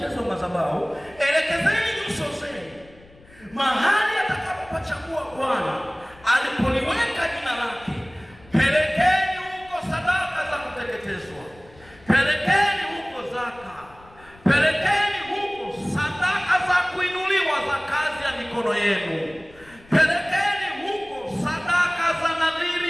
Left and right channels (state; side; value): noise; left; rumble, 25 dB below the sound